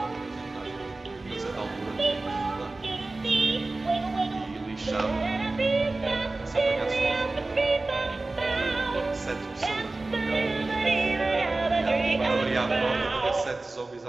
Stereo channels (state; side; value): quieter; left; 3.2 dB